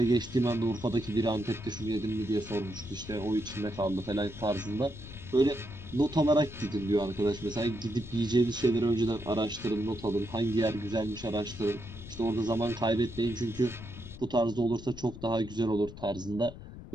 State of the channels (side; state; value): left; noise; rumble, 14 dB below the sound